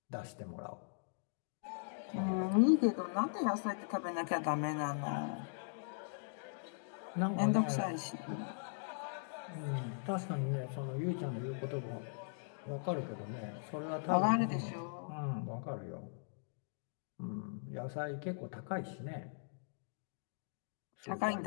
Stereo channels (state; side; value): silent; right; digital silence